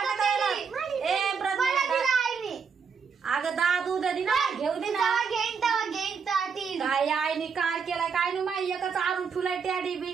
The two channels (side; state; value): left; quieter; 6.0 dB